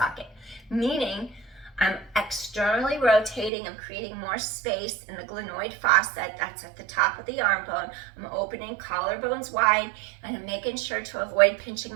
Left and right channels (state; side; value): drops out; left; at 3.5 s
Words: meaning I'm externally rotating. I'm creating more space in the glenoid fossa. That's at the top of the arm bone. I'm opening collarbones wide, and I'm making sure to avoid pinching